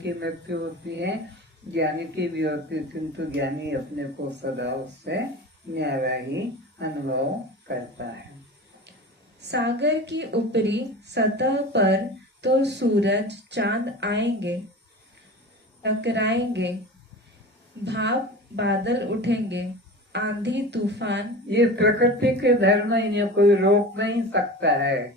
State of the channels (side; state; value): both; normal; correlation 0.33